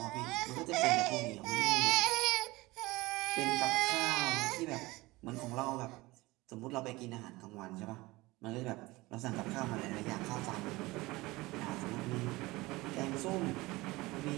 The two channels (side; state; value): left; quieter; 21.0 dB